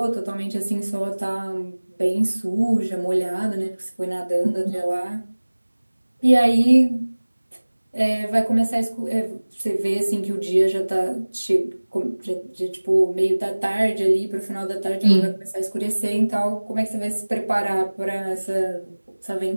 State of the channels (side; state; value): both; inverted; correlation -1.00